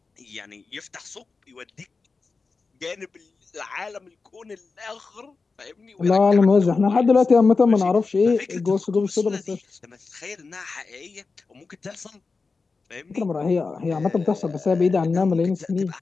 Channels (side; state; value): right; quieter; 4.3 dB